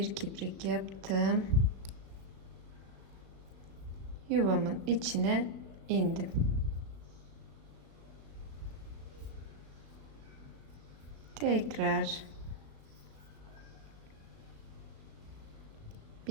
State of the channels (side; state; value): left; late; 36 ms